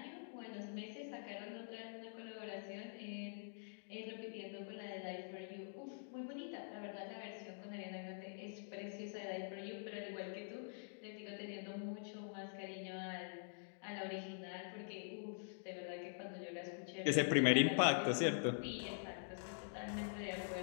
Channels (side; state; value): right; silent; digital silence